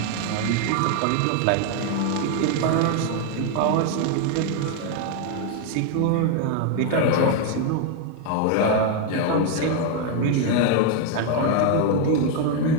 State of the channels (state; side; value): different; both; correlation 0.01